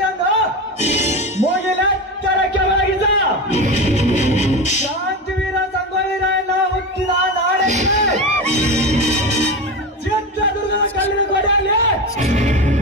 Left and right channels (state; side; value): normal; both; correlation 0.22